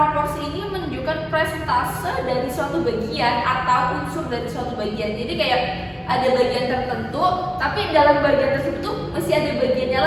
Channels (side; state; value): both; identical; correlation 1.00